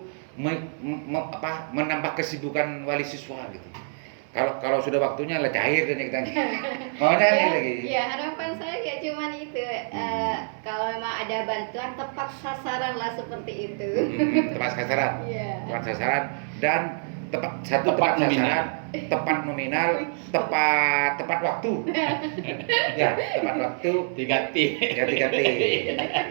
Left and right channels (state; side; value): silent; left; 60 dB below the other